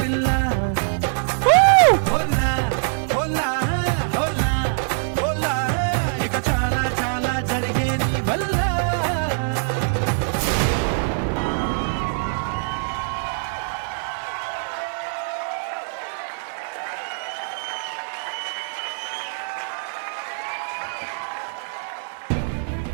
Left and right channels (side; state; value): left; silent; digital silence